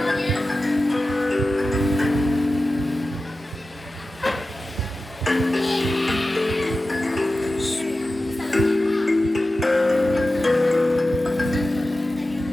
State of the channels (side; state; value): both; normal; correlation 0.94